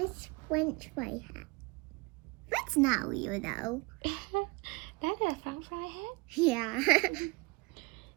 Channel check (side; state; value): left; quieter; 26.7 dB